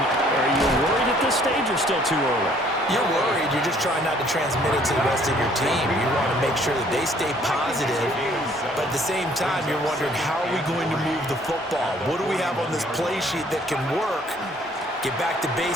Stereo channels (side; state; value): both; normal; correlation 0.60